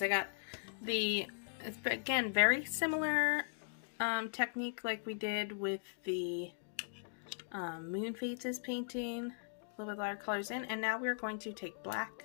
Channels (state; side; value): silent; right; digital silence